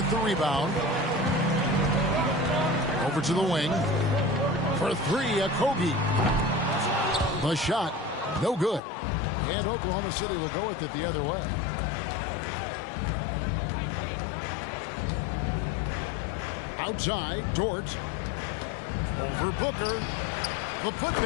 the rebound. Over to the wing. For 3, Okogie. The shot, no good. And Oklahoma City will go with it the other way. Outside, Dort. Over Booker. The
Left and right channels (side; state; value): right; drops out; at 8.8 s